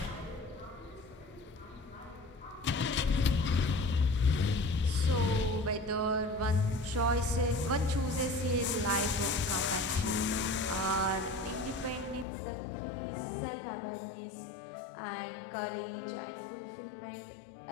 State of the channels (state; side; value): drops out; right; at 12.2 s